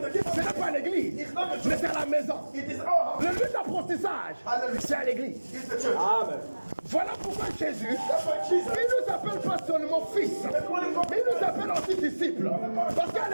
n'est pas à l'église, mais c'est à la maison. It is our house. Le lieu d'apprentissage, c'est à l'église. It's the church. Voilà pourquoi Jésus, That's why Jesus. il ne nous appelle pas seulement fils, mais il nous appelle aussi disciples. Parce qu'à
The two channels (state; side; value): inverted; both; correlation -1.00